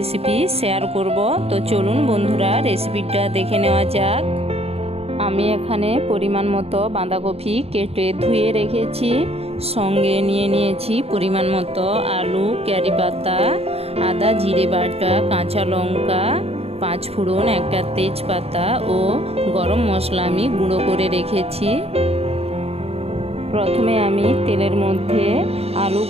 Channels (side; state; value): left; late; 0.29 ms